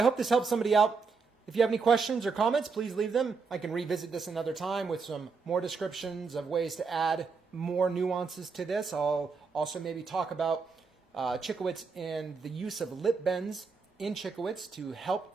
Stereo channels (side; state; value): left; quieter; 4.9 dB